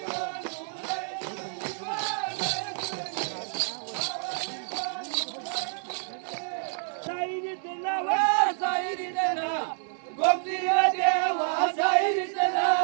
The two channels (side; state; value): left; silent; digital silence